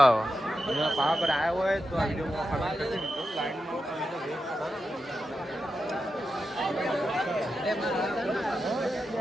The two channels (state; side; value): normal; both; correlation 0.89